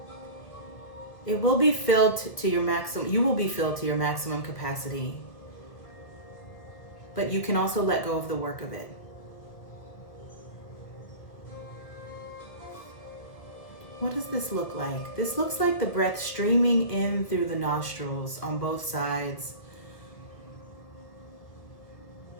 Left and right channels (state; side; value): late; right; 1.7 ms